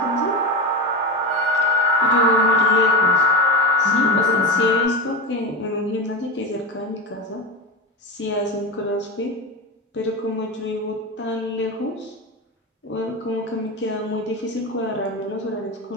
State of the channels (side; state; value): both; normal; correlation 0.17